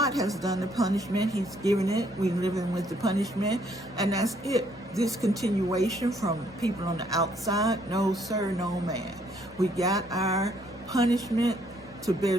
has done the punishment. He's given it. We're living with the punishment, and that's it. This continuation from people on the outside, no sir, no man. We got our punishment to bear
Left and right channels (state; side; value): normal; both; correlation 0.67